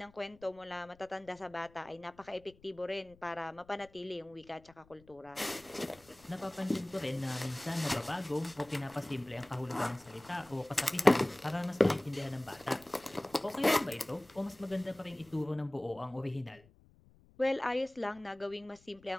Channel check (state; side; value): noise; left; rumble, 27 dB below the sound